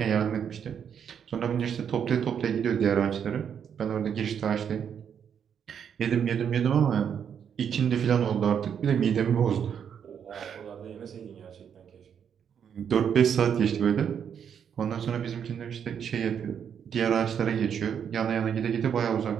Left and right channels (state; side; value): quieter; left; 8.0 dB